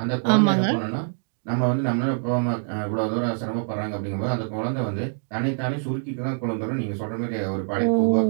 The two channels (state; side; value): silent; left; digital silence